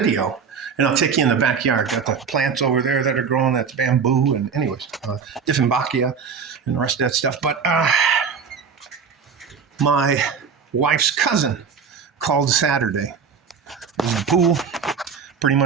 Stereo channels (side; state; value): left; quieter; 6.1 dB